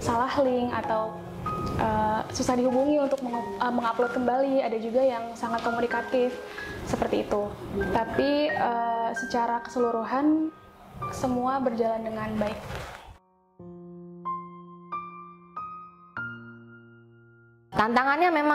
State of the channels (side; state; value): both; identical; correlation 1.00